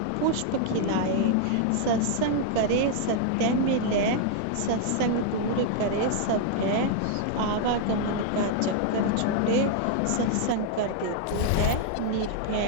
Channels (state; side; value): different; both; correlation 0.00